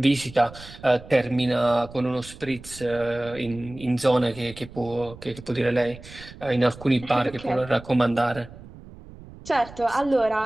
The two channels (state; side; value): noise; right; rumble, 17 dB below the sound